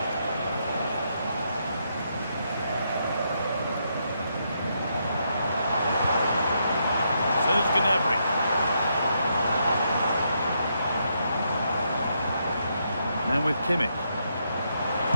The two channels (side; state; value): both; inverted; correlation -0.78